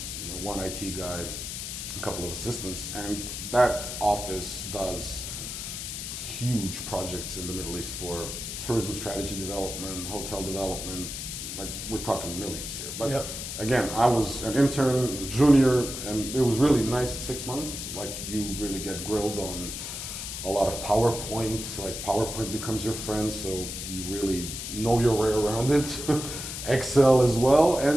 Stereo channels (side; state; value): left; noise; hiss, 6 dB below the sound